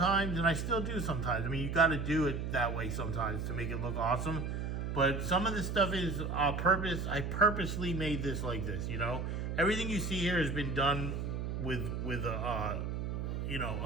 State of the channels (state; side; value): noise; right; hum, 3 dB below the sound